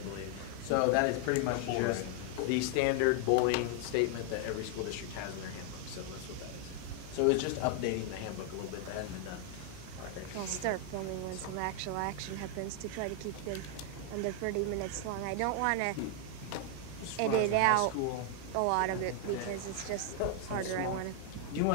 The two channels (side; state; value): both; different; correlation 0.00